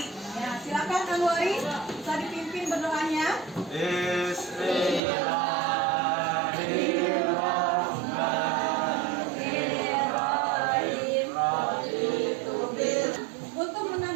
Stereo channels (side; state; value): left; drops out; at 5.0 s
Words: Ya, silakan Anwari, bisa dipimpin berdoanya. Untuk